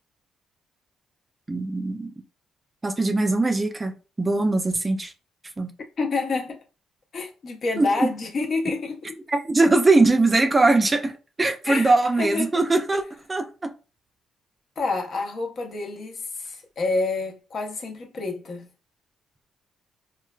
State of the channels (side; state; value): both; normal; correlation 0.90